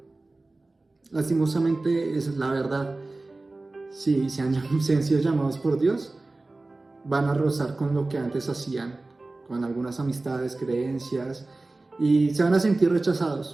Lastimosamente, esa es la verdad. Si se han sido llamados por Dios, van a rozar con lo que antes hacían, con algunas amistades, creencias, y se van a sentir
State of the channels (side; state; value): left; quieter; 3.1 dB